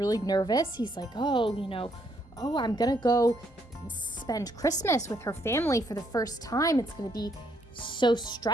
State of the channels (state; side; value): normal; both; correlation 0.71